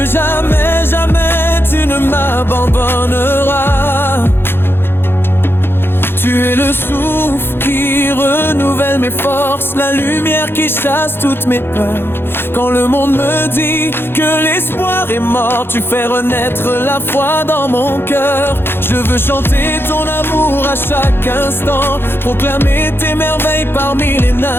jamais, jamais tu ne m'abandonneras. Tu es le souffle qui renouvelle mes forces, la lumière qui chasse toutes mes peurs. Quand le monde me dit que l'espoir est mort, tu fais renaître la foi dans mon cœur. Je veux chanter ton amour à chaque instant, proclamer tes merveilles parmi les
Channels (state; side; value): late; right; 0.11 ms